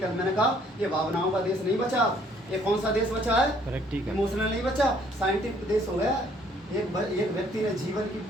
मैंने कहा ये भावनाओं का देश नहीं बचा, ये कौन सा देश बचा है? प्रैक्टिकल। इमोशनल नहीं बचा, साइंटिफिक देश हो गया। एक व्यक्ति ने जीवन की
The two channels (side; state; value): both; normal; correlation 0.62